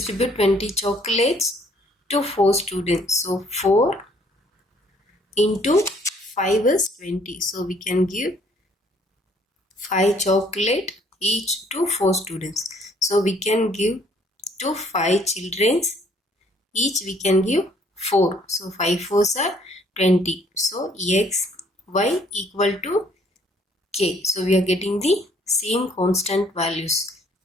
20 chocolates to 4 students. So 4 into 5 is 20. So we can give 5 chocolate each to 4 students. So we can give to 5 children. Each we can give 4. So 5 4s are 20. So x y equal to k. So we are getting the same constant values.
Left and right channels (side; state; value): both; normal; correlation 0.62